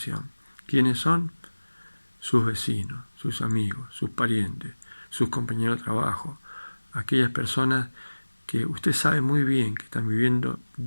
¿Quiénes son? Sus vecinos, sus amigos, sus parientes, sus compañeros de trabajo, aquellas personas que usted sabe muy bien que están viviendo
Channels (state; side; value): inverted; both; correlation -1.00